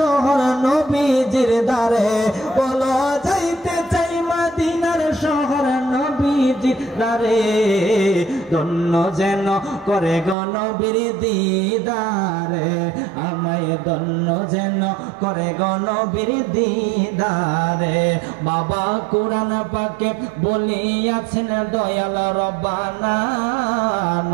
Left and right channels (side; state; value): left; drops out; at 10.4 s